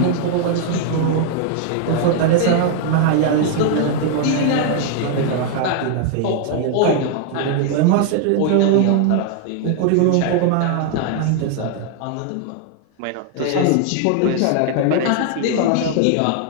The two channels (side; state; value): both; different; correlation 0.00